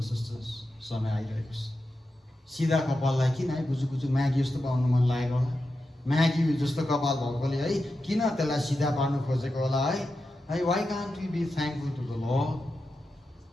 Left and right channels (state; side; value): normal; both; correlation 0.90